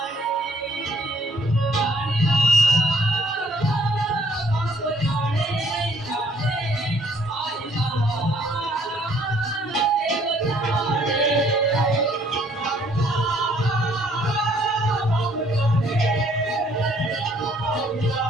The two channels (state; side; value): normal; both; correlation 0.63